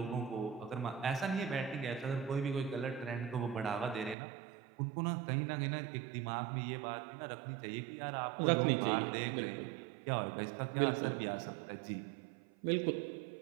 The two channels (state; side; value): drops out; left; at 4.2 s